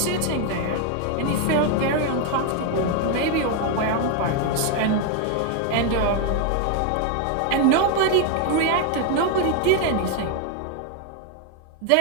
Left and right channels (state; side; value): different; both; correlation 0.01